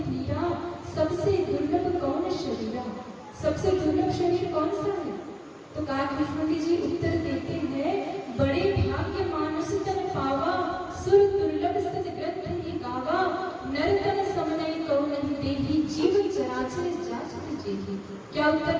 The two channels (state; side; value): identical; both; correlation 1.00